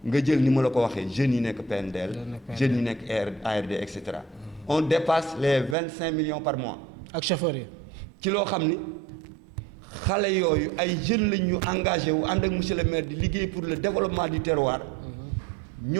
nga jël ni ma la ko waxee jeunes yi nekk PNDL. jeunes yi nekk ARD et cetera. on dépasse les 25 millions par mois. ak chauffeur yi. ci loo xam ni xale yooyu ay jeunes lañ ñu engagé wu ànd ak monsieur le maire di liggéey pour le développement du terroir.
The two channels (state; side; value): drops out; left; at 5.8 s